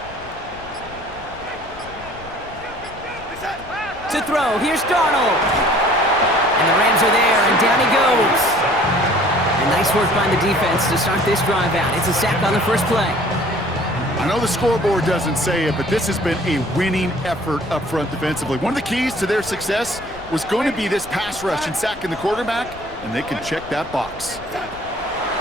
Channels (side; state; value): left; noise; rumble, 18 dB below the sound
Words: To throw, here's Darnold. And the Rams are there, and down he goes. And nice work by the defense to start this drive out. It's a sack on the first play. I know the scoreboard doesn't say it, but this has been a winning effort up front defensively. One of the keys to their success was going to be this pass rush and sacking the quarterback, and they can check that box.